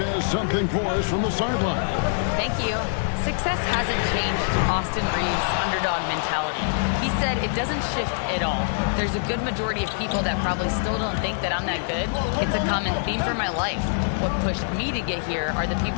something for us from the sideline. Thank you. Success hasn't changed Austin Reeves' underdog mentality. He said it doesn't shift at all. There's a good majority of people that probably still don't think that I'm that good. It's a common theme for my life. What pushed me to get here are the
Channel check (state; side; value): silent; right; 62 dB below the other